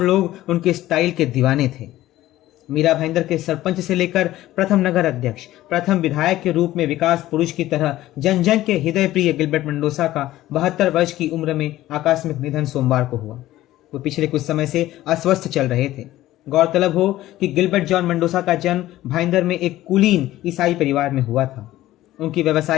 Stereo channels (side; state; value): right; quieter; 15.2 dB